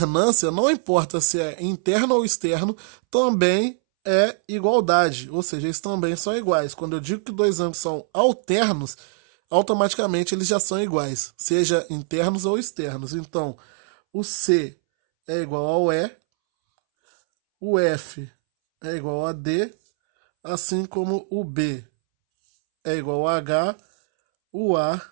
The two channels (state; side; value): silent; left; 64 dB below the other